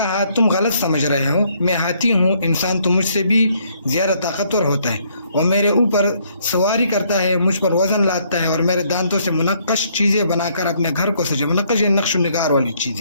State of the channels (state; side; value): inverted; both; correlation -0.68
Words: تم غلط سمجھ رہے ہو, میں ہاتھی ہوں, انسان تو مجھ سے بھی زیادہ طاقتور ہوتا ہے. وہ میرے اوپر سواری کرتا ہے, مجھ پر وزن لاتا ہے اور میرے دانتوں سے منقش چیزیں بنا کر اپنے گھر کو سجے. منقش نقش و نگار والی